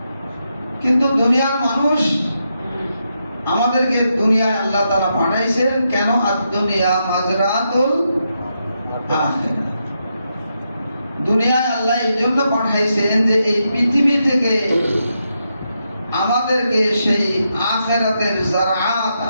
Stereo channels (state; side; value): inverted; both; correlation -0.83